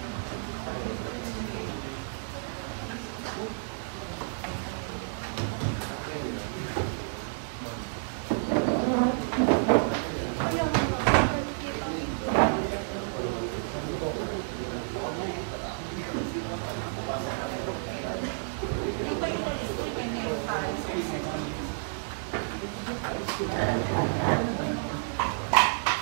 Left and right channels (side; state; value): left; silent; digital silence